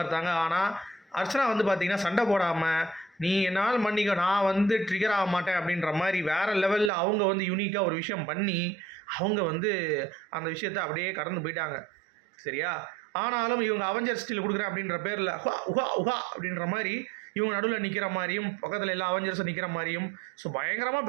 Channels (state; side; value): drops out; left; at 6.9 s